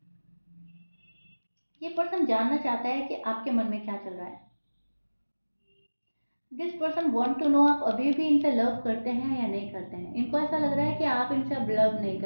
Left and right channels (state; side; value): inverted; both; correlation -1.00